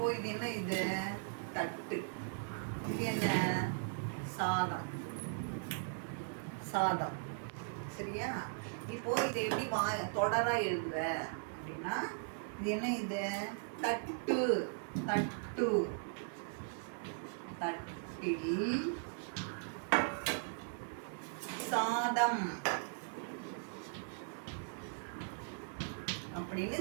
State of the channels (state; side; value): silent; left; digital silence